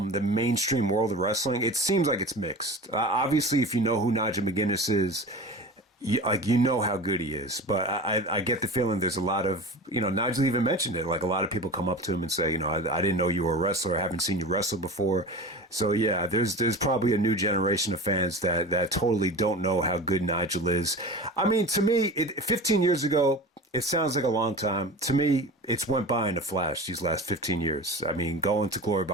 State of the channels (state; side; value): normal; both; correlation 0.33